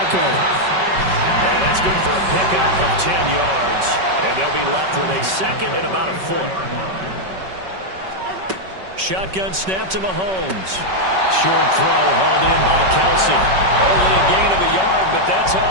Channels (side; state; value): left; late; 5.3 ms